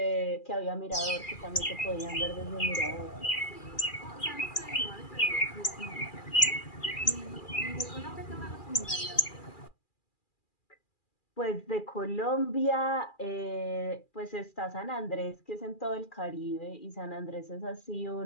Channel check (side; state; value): right; late; 2.4 ms